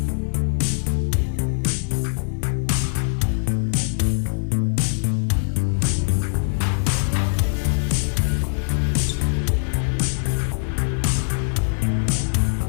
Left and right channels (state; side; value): silent; right; digital silence